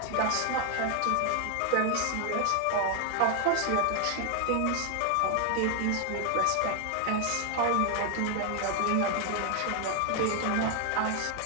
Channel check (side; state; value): both; different; correlation 0.00